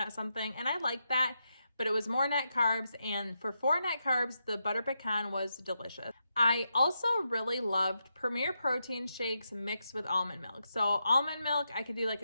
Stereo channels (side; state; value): both; inverted; correlation -0.85